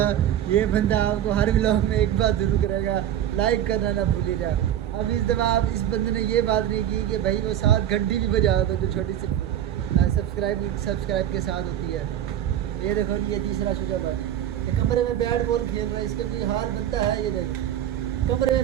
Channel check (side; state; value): left; quieter; 10.9 dB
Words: ये बंदा आपको हर व्लॉग में एक बात जरूर करेगा, लाइक करना ना भूलिएगा। अब इस दफ़ा आप इस बंदे ने ये बात नहीं की कि भाई वो 7 घंटी भी बजा दो, जो छोटी सी सब्सक्राइब के साथ होती है। ये देखो ये तीसरा शुजा था, तो कमरे में बैट बॉल खेल रहा है, इसका कोई हाल बनता है ये भाई, कमरे